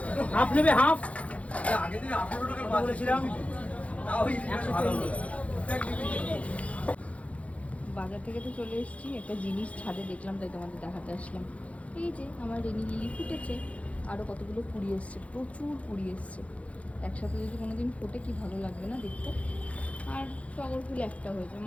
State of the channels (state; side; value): late; right; 0.065 ms